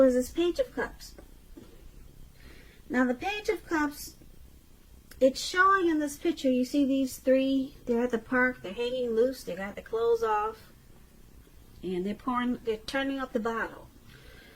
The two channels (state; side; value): identical; both; correlation 1.00